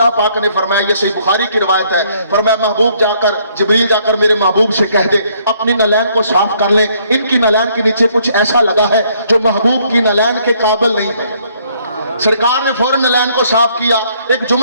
पाक ने फरमाया, ये सही बुखारी की रिवायत है, फरमाया महबूब जाकर, जिब्रील जाकर मेरे महबूब से कह दे अपनी नलैन को साफ कर ले, इनकी नलैन के नीचे कुछ ऐसा लगा है जो महबूब की नलैन के काबिल नहीं है। सरकार ने फौरन नलैन को साफ किया। एक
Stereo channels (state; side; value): inverted; both; correlation -0.66